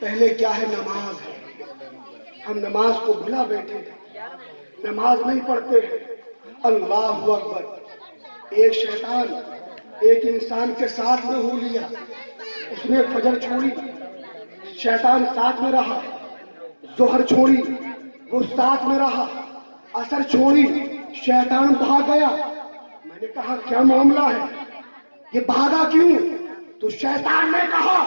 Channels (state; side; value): inverted; both; correlation -1.00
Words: کیا ہے؟ نماز ہے، ہم نماز کو بھلا بیٹھے ہیں، نماز نہیں پڑھتے ہیں۔ اللہ اکبر۔ ایک شیطان ایک انسان کے ساتھ میں ہو لیا، اس نے فجر چھوڑی، شیطان ساتھ میں رہا، ظہر چھوڑی، وہ ساتھ میں رہا، عصر چھوڑی، شیطان بھاگ گیا۔ میں نے کہا کیا معاملہ ہے، یہ بھاگا کیوں؟ تو شیطان نے کہا